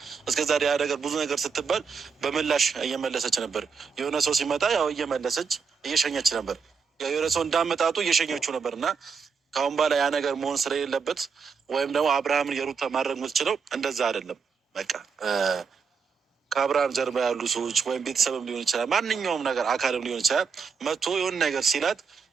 እስከዛሬ ያ ነገር ብዙ ነገር ስትባል በምላሽ እየመለሰች ነበር። የሆነ ሰው ሲመጣ ያው እየመለሰች እየሸኘች ነበር። የሆነ ሰው እንዳመጣጡ እየሸኘችው ነበር እና ከአሁን በኋላ ያ ነገር መሆን ስለሌለበት ወይም ደግሞ አብርሃምን የሩታ ማድረግ የምትችለው እንደዛ አይደለም። በቃ ከአብርሃም ጀርባ ያሉ ሰዎች ወይም ቤተሰብም ሊሆን ይችላል፣ ማንኛውም ነገር አካልም ሊሆን ይችላል መጥቶ የሆነ ነገር ሲላት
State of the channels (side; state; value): left; quieter; 5.7 dB